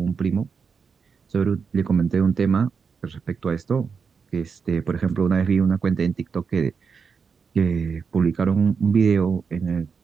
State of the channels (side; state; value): left; quieter; 5.7 dB